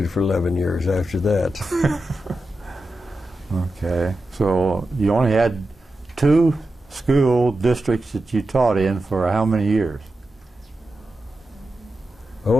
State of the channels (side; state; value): both; normal; correlation 0.91